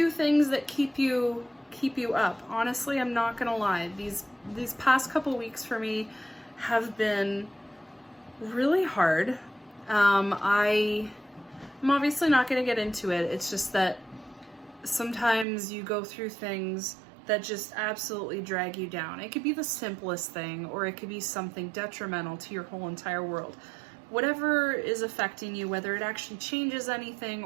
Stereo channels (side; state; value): left; drops out; at 15.5 s